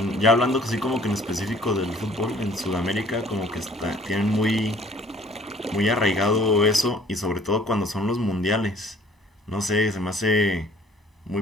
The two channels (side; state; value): both; normal; correlation 0.55